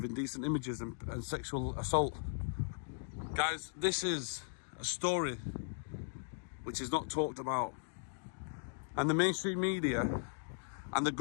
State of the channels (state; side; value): silent; right; digital silence